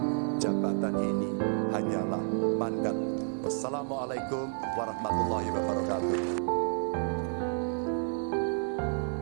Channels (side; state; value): left; silent; 57 dB below the other